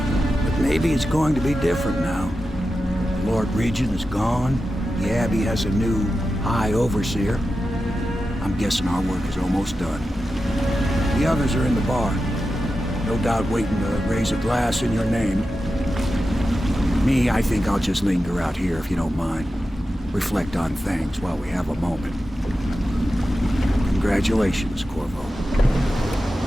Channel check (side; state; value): both; normal; correlation 0.91